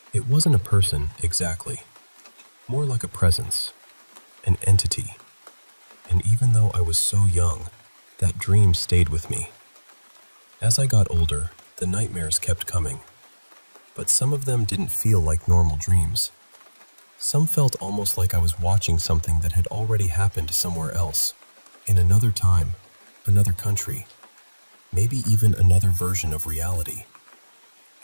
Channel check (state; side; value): inverted; both; correlation -1.00